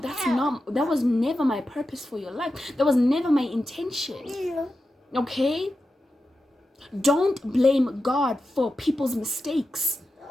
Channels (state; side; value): normal; both; correlation 0.91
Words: was never my purpose for your life. That was never my intention. Okay? Don't blame God for people's mistakes.